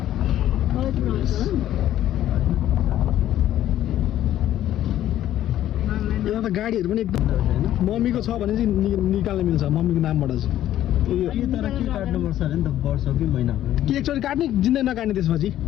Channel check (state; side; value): quieter; right; 12.5 dB